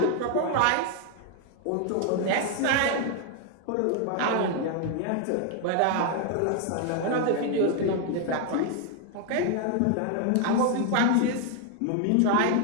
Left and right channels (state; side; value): different; both; correlation 0.01